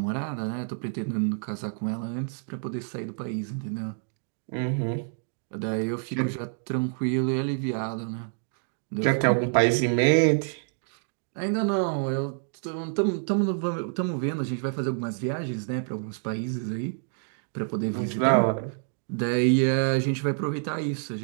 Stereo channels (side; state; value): left; silent; digital silence